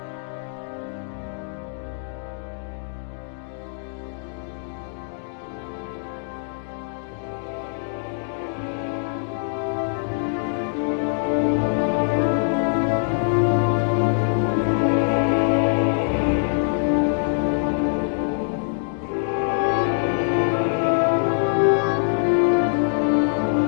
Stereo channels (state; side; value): silent; right; digital silence